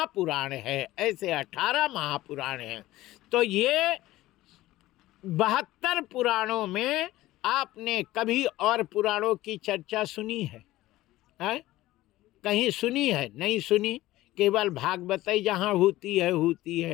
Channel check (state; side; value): quieter; right; 16.6 dB